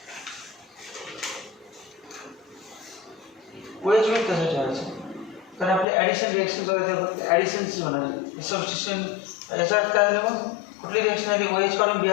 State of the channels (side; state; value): right; drops out; at 5.9 s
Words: OH में कसं ठेवायचं कारण आपले ॲडिशन रिएक्शन बघा ॲडिशनच होणार सबस्टिट्यूशन याचा अर्थ काय झालं मग कुठली रिएक्शन आली OH काढून